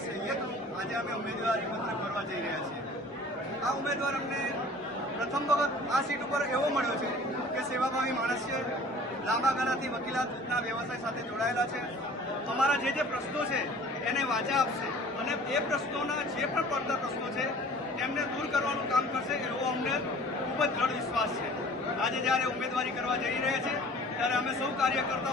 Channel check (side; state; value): both; normal; correlation 0.47